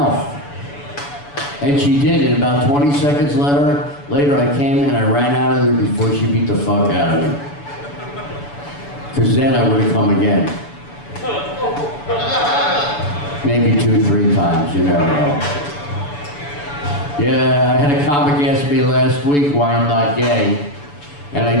And she did, and about 20 seconds later I came and I ran out of there before she beat the fuck out of me. Because then I would have come again. Maybe 2-3 times, you never know. Yeah, I had a comic ask me last week why I'm not gay. And I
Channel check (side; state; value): right; late; 7.0 ms